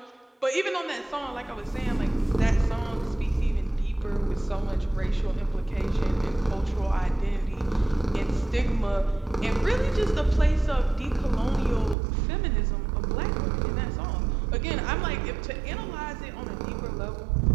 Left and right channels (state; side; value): drops out; left; at 12.0 s